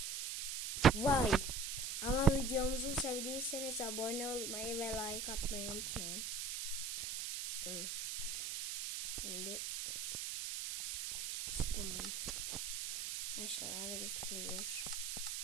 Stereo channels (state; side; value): noise; right; hiss, 3 dB below the sound